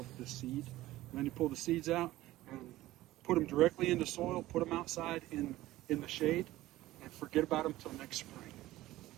the seed. And then you pull the seeds out and put them directly into soil, put them outside in the shade, and forget about them till next spring.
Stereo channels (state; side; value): quieter; left; 16.3 dB